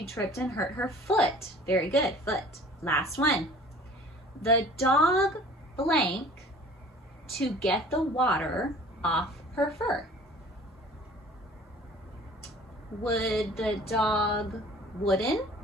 tripped and hurt her foot. Very good. Foot. Last one. The dog blank to get the water off her fur. Would the dog wooden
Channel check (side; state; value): both; normal; correlation 0.47